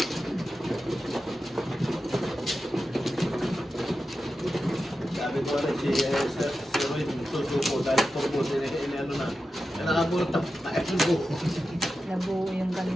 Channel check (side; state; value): both; normal; correlation 0.92